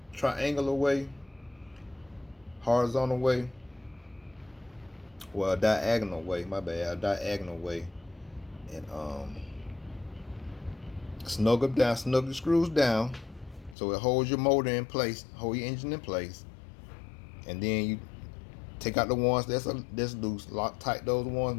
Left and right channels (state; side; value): drops out; right; at 13.8 s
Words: horizontal way, well, a diagonal way, my bad, a diagonal way, and snug the screws down, so it holds your motor in place, hold your engine in place, and then you take out the ones that's loose, lock tight those